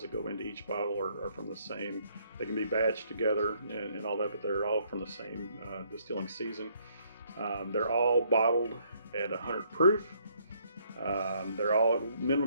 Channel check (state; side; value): inverted; both; correlation -0.67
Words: that go into each bottle are from the same. They can be batched together and all that, but they're all from the same distilling season. They're all bottled at 100 proof. They're all at a